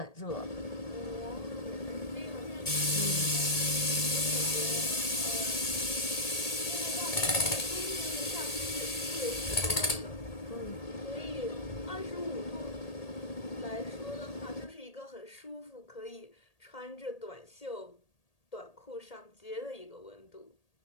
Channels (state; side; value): late; right; 1.8 ms